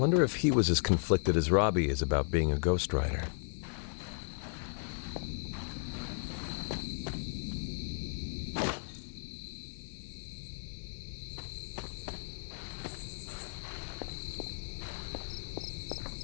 if he was as conflicted as Robbie is about being a Ghost Rider.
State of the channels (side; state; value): right; silent; digital silence